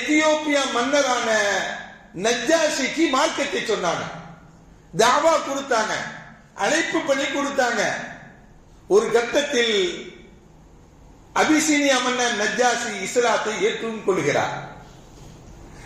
மன்னரான நஜ்ஜாஷிக்கு மார்க்கத்தை சொன்னாங்க, தாவா கொடுத்தாங்க, அழைப்பு பண்ணி கொடுத்தாங்க. ஒரு கட்டத்தில் அபிசீனியா மன்னர் நஜ்ஜாஷி இஸ்லாத்தை ஏற்றுக் கொள்கிறார்.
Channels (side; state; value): both; identical; correlation 1.00